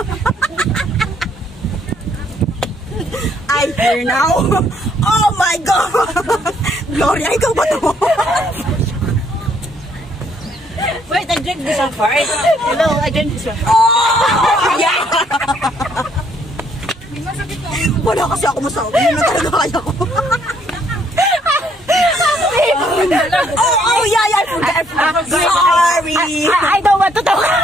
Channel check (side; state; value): both; normal; correlation 0.67